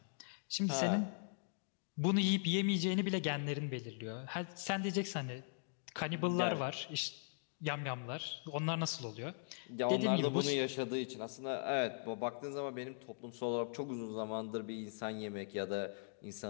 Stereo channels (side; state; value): right; silent; digital silence